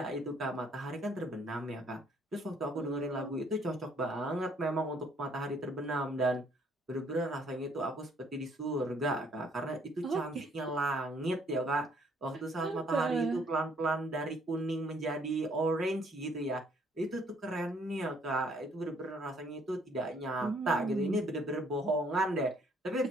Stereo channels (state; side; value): normal; both; correlation 0.64